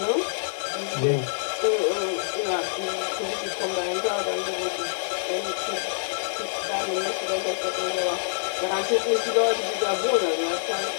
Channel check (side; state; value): right; silent; digital silence